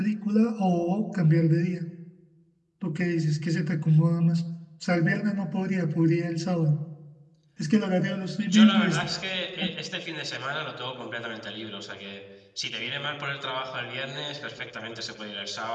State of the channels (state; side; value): identical; both; correlation 1.00